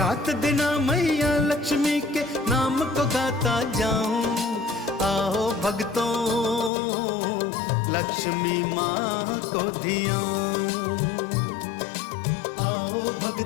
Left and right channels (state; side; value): drops out; right; at 6.7 s